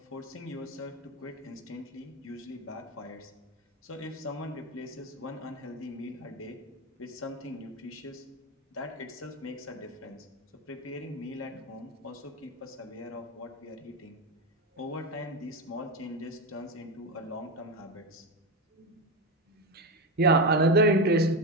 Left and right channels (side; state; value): both; normal; correlation 0.16